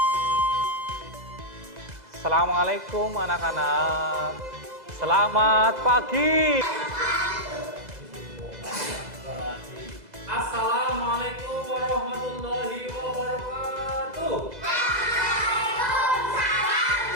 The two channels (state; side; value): late; left; 2.0 ms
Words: Assalamualaikum anak-anak. Selamat pagi. Assalamualaikum warahmatullahi wabarakatuh.